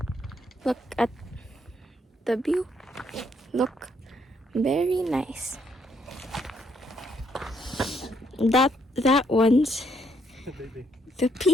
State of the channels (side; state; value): both; normal; correlation 0.72